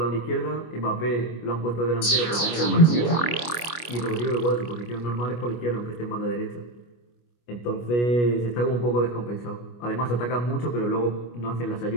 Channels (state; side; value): late; right; 25 ms